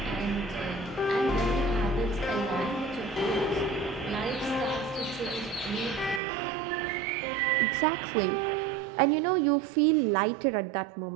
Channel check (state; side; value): drops out; left; at 6.2 s